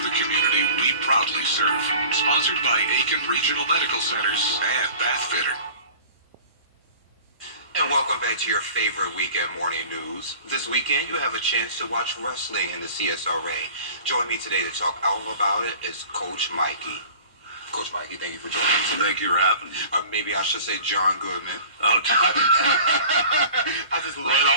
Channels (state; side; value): inverted; both; correlation -0.43